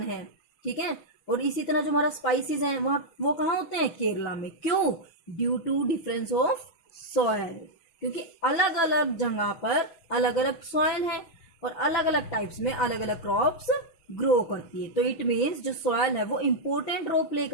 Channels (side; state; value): right; late; 6.0 ms